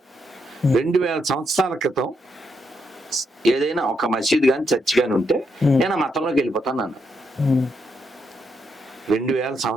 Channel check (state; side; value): normal; both; correlation 0.79